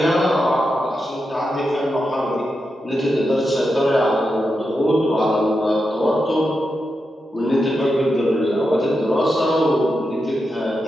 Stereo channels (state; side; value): normal; both; correlation 0.88